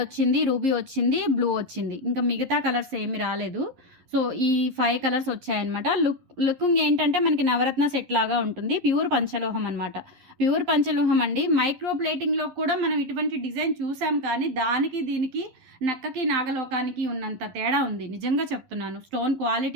వచ్చింది, రూబీ వచ్చింది, బ్లూ వచ్చింది. ఇంకా మిగతా కలర్స్ ఏమి రాలేదు. సో ఈ 5 కలర్స్ వచ్చాయన్నమాట. లుకింగ్ ఏంటంటే మనకి నవరత్న సెట్ లాగా ఉంటుంది. ప్యూర్ పంచలోహం అనమాట, ప్యూర్ పంచలోహం అండి. మైక్రో ప్లేటింగ్లో కూడా మనం ఇటువంటి డిజైన్ చూసాం, కానీ దానికి దీనికి నక్కకి నాగలోకానికి ఉన్నంత తేడా ఉంది, నిజంగా చెప్తున్నాను. స్టోన్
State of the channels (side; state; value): left; late; 11 ms